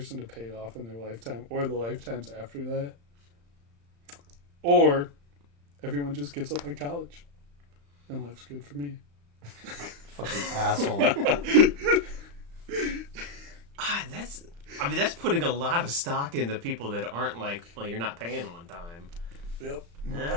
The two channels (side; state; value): left; late; 35 ms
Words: to pay it off in their lifetime or the lifetimes after that. Or everyone just gets up in college and life's good for me. Fucking asshole. That's putting a lot of stock into people that aren't like, well, you're not paying on time. Yep.